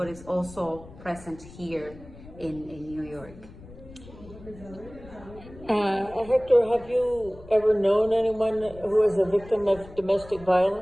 it's also present here in New York. Hector, have you ever known anyone who is a victim of domestic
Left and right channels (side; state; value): left; noise; rumble, 18 dB below the sound